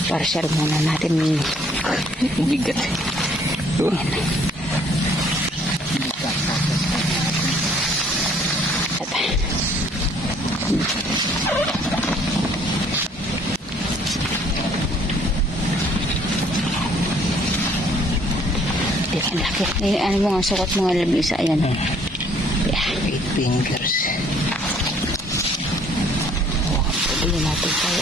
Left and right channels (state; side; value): normal; both; correlation 0.60